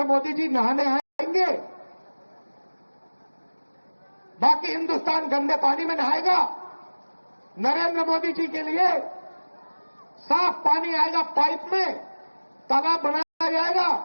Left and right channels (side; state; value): both; inverted; correlation -1.00